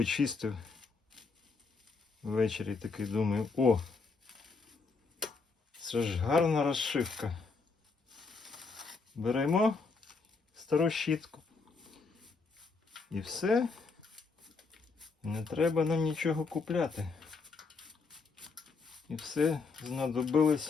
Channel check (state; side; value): quieter; right; 4.4 dB